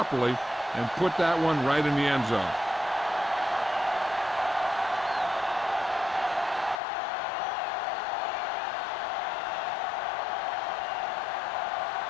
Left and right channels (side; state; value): right; drops out; at 6.8 s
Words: and put that one right in the end zone.